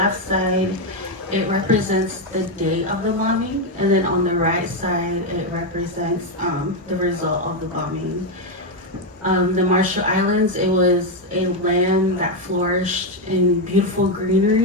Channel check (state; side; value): normal; both; correlation 0.05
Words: side, it represents the day of the bombing, and then on the right side, it represents the result of the bombing. The Marshall Islands, it was a land that flourished in beautiful